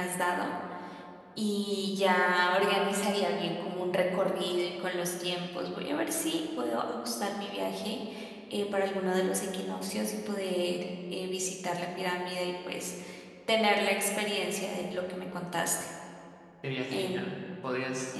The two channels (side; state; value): both; identical; correlation 1.00